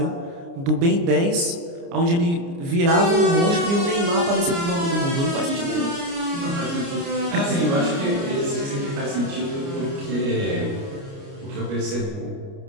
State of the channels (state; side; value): late; left; 29 ms